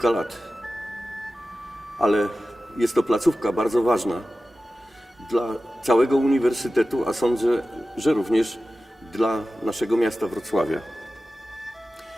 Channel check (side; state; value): both; normal; correlation 0.95